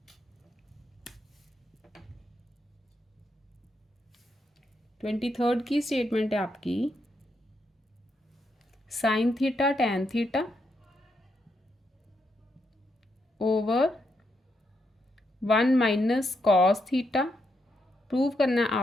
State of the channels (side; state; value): both; normal; correlation 0.80